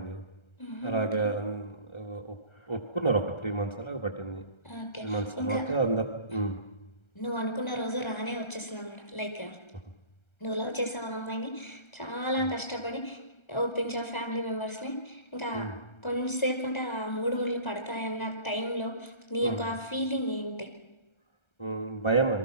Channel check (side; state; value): right; late; 1.3 ms